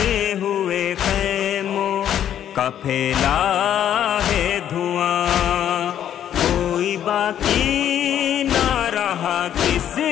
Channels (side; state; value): right; quieter; 10.3 dB